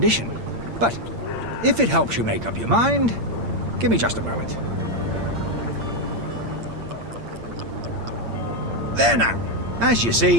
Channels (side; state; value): left; late; 8.7 ms